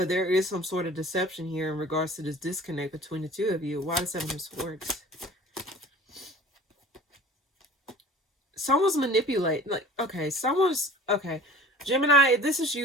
there is some sort of deception here in regards to this disconnect between the two of you. Why the Seven of Swords? Someone's manipulating. Like, okay, Gemini, if this is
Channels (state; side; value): normal; both; correlation 0.43